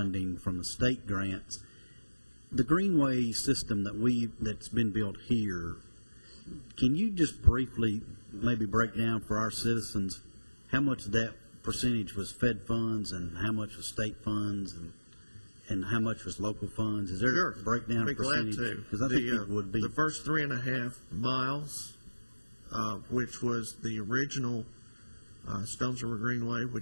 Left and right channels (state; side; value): inverted; both; correlation -1.00